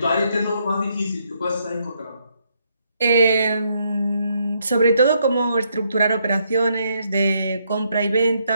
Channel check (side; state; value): both; inverted; correlation -0.74